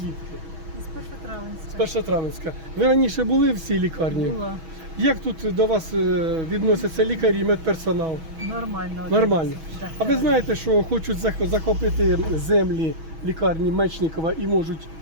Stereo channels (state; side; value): late; left; 6.2 ms